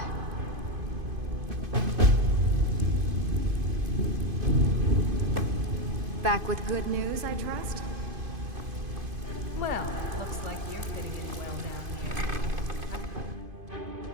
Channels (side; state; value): left; late; 2.5 ms